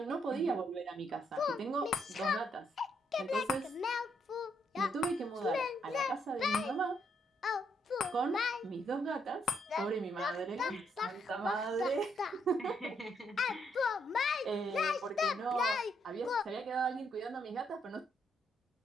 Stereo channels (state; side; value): normal; both; correlation 0.74